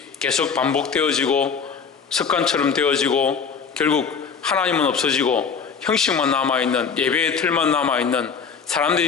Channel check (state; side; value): quieter; right; 6.0 dB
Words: 계속 반복되어지고 습관처럼 되어지고 결국 하나님은 없어지고 형식만 남아있는, 예배의 틀만 남아있는,